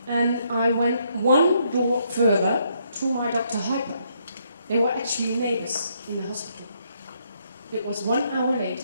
And I went one door further to my Dr. Hyper. They were actually neighbors in the hospital. It was 1 hour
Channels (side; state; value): both; inverted; correlation -0.73